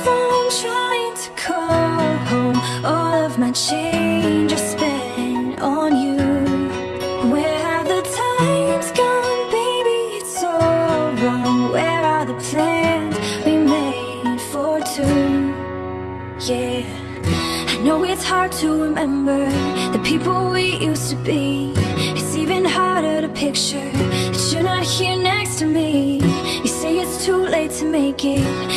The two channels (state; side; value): identical; both; correlation 1.00